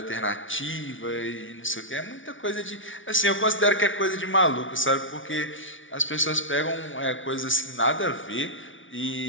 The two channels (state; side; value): late; right; 0.56 ms